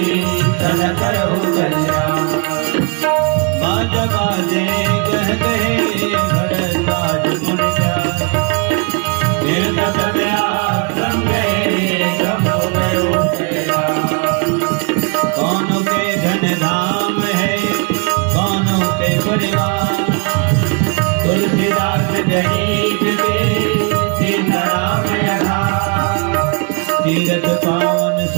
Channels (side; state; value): left; quieter; 35.0 dB